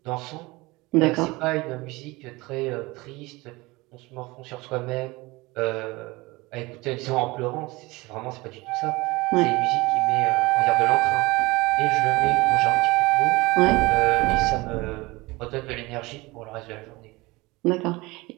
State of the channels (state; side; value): quieter; left; 22.5 dB